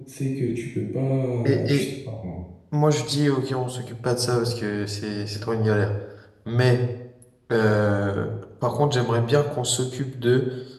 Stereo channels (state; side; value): identical; both; correlation 1.00